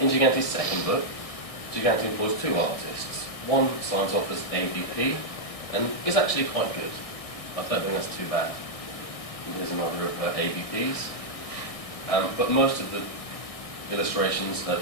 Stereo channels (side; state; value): right; late; 1.6 ms